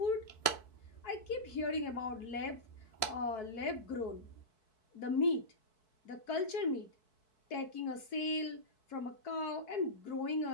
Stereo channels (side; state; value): right; late; 4.6 ms